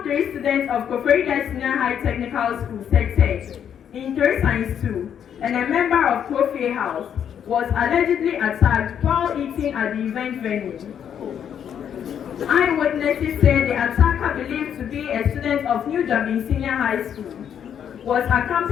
3 student of Koforidua Senior High Technical School, SECTECH, in 3 Science 2, and a member of Kofi House, was allegedly attacked while eating at the event venue. Eyewitnesses say the attacker, believed to be a student of New Dublin Senior High School, was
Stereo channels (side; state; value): right; quieter; 8.8 dB